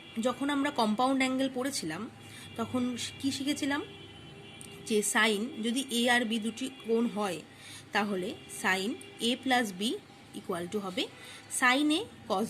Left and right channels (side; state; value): both; identical; correlation 1.00